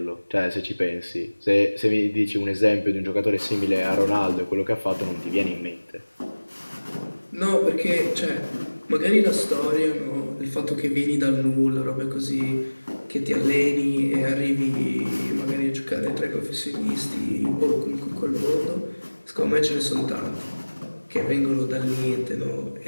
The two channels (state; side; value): inverted; both; correlation -1.00